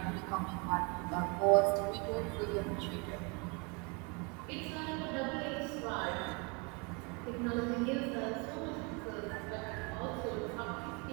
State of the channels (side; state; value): left; quieter; 31.4 dB